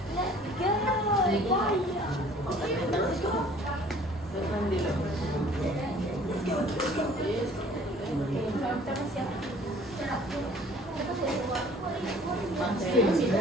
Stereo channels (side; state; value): both; normal; correlation 0.53